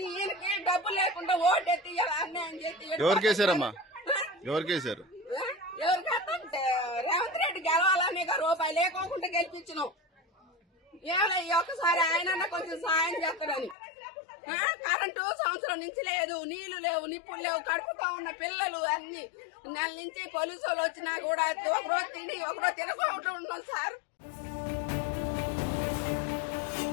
ఈయనకి డబ్బు లేకుండా ఓటెత్తి అన్యాయం చేసి ఎవరికేసారమ్మా? ఎవరికేసారు? ఎవరికంటే రేవంత్ రెడ్డి గెలవాలని రూపాయి లేకోకుండా గెలిపించినాం. ఏమన్నా ఒక్కసారి ఆయన కొంచెం సాయం చేస్తాడని. కరెంటు సంవత్సరం నుంచి లేదు, నీళ్లు లేవు, నిప్పులు లేవు, కడుపుతా ఉన్న పిల్లలు అన్ని నెల నుంచి పోలీసు వాళ్ళు వచ్చినా కూడా ఒకరోజు తిని ఒకరోజు తినకుండా ఉన్నాం సార్.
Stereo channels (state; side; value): drops out; right; at 13.8 s